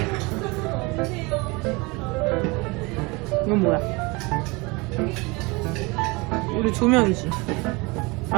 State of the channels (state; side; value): quieter; left; 26.0 dB